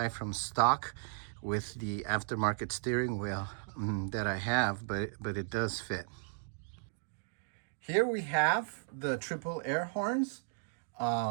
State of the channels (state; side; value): silent; left; digital silence